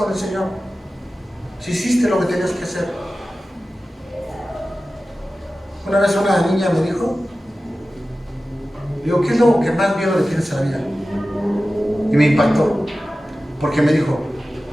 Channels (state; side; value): normal; both; correlation 0.95